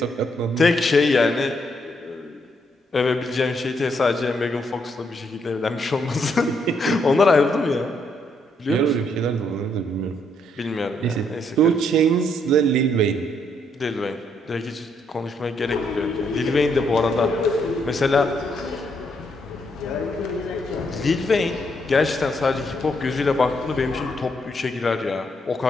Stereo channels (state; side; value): normal; both; correlation 0.74